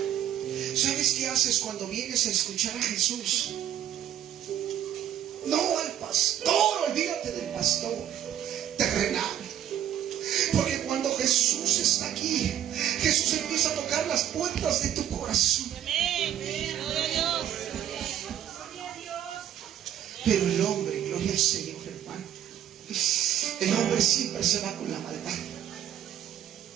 ¿Sabes qué haces cuando vienes a escuchar a Jesús? No al pastor, olvídate del pastor terrenal. Porque cuando Jesús está aquí, Jesús empieza a tocar las puertas de tu corazón. Pero el hombre, gloria al Señor, hermano, el hombre siempre se va con la maldad.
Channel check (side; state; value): left; quieter; 10.8 dB